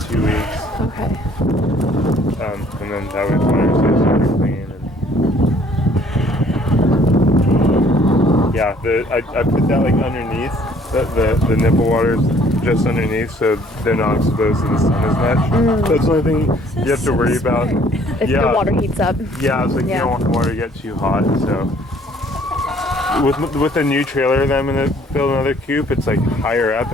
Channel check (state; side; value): normal; both; correlation 0.59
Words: weeks. Okay. And then that way water stays super clean. And yeah, I put that like underneath the nipple waters just underneath, so they're not exposed to the sun as much. That's the only thing you have to worry about. If the water heats up. Yeah, it's like you don't want the water to get too hot. So with a new trailer that I'm gonna build another coop, it's like higher up,